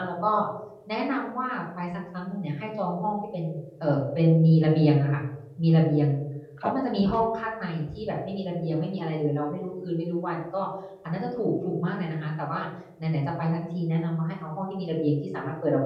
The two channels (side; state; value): both; identical; correlation 1.00